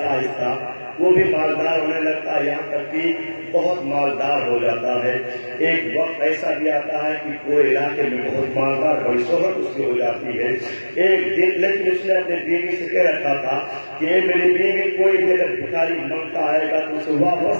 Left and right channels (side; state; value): both; inverted; correlation -1.00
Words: آہستہ وہ بھی مالدار ہونے لگتا ہے, یہاں تک کہ بہت مالدار ہو جاتا ہے. ایک وقت ایسا بھی آتا ہے کہ پورے علاقے میں بہت مالدار بڑی شہرت اس کی ہو جاتی ہے. ایک دن لیکن اس نے اپنے بیوی سے کہہ رکھا تھا کہ میری بیوی کوئی بھی اگر بھکاری مانگتا آئے گا تو اسے